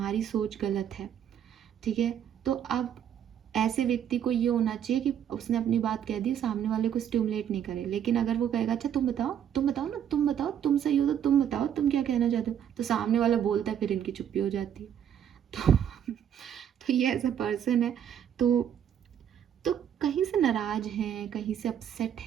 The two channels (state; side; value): quieter; left; 9.3 dB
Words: सोच गलत है, ठीक है। तो अब ऐसे व्यक्ति को ये होना चाहिए कि उसने अपनी बात कह दी, सामने वाले को स्टिमुलेट नहीं करे। लेकिन अगर वो कहेगा अच्छा तुम बताओ ना, तुम बताओ, तुम सही हो तो तुम बताओ, तुम क्या कहना चाहते हो, तो सामने वाला बोलता है, फिर इनकी चुप्पी हो जाती है। तो ये ऐसा पर्सन है, तो कहीं से नाराज हैं, कहीं से अपसेट